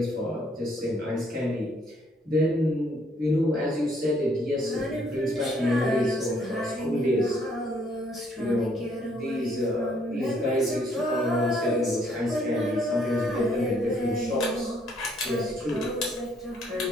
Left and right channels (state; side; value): normal; both; correlation 0.66